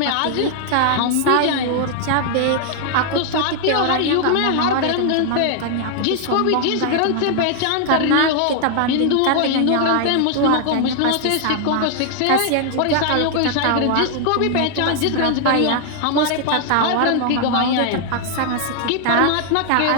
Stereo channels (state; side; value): different; both; correlation 0.00